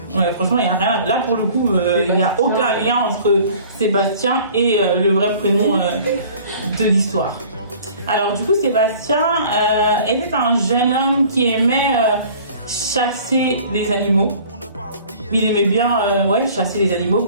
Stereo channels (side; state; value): both; inverted; correlation -0.49